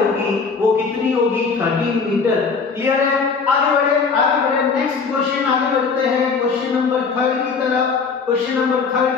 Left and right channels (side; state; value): right; quieter; 5.1 dB